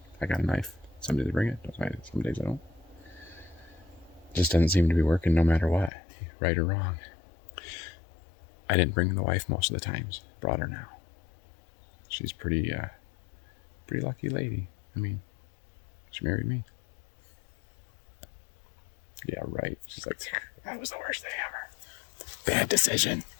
I got a knife. Some days I bring it, some days I don't. Just doesn't seem to be working no matter what, right or wrong. I didn't bring the wife most of the times. Brought her now. She's pretty lucky lady. I mean, she married me. Yeah, right. She's like, that was the worst thing ever. Bad decision.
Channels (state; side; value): drops out; right; at 5.9 s